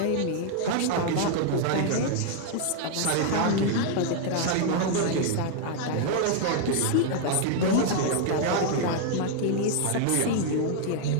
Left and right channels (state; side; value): different; both; correlation 0.00